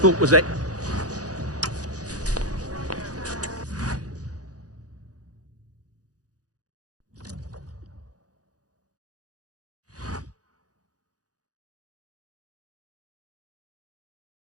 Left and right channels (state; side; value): late; left; 0.67 ms